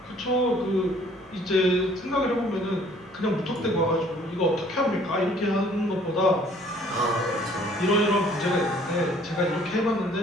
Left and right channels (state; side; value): normal; both; correlation 0.57